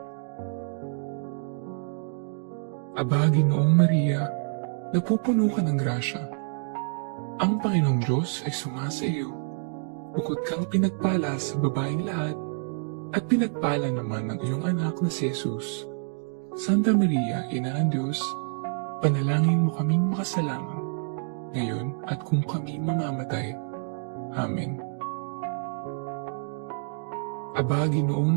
Aba, Ginoong Maria, napupuno ka ng grasya. Ang Panginoong Diyos ay sumasa iyo. Bukod kang pinagpala sa babaeng lahat, at pinagpala naman ng iyong anak na si Jesus. Santa Maria, Ina ng Diyos, panalangin mo kaming makasalanan, ngayon at kung kami mamamatay. Amen. Aba, Ginoong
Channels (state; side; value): silent; left; 60 dB below the other